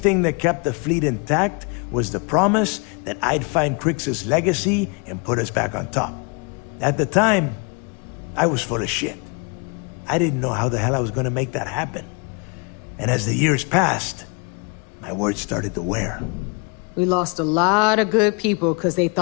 that kept the fleet intact was the promise that I'd find Crix's legacy and put us back on top. At the time, I was full of shit. I didn't know how the hell I was going to make that happen. And as the years passed, my words started to wear. We lost a lot of good people because they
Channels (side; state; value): right; quieter; 33.6 dB